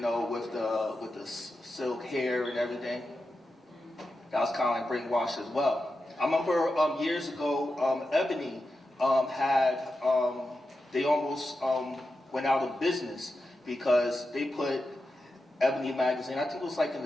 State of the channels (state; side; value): normal; both; correlation 0.90